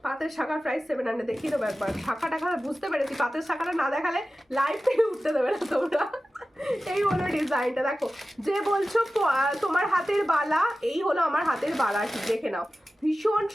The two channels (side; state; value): both; normal; correlation 0.95